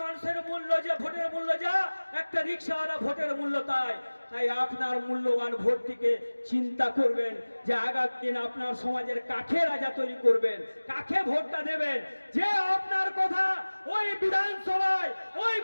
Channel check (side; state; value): both; inverted; correlation -1.00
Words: মানুষের মূল্য যে, ভোটের মূল্য যা, একটা রিক্সাওয়ালা ভোটের মূল্য তাই। তাই আপনার মূল্যবান ভোটটিকে চিন্তা করবেন যে আগামী দিন আপনার সমাজের কাকে রাজা তৈরি করবেন, কাকে ভোটটা দেবেন, যে আপনার কথা ওই বিধানসভায়, ওই